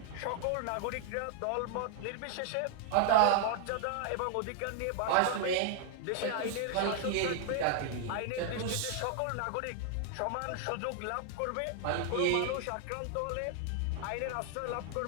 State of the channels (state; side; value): different; both; correlation 0.00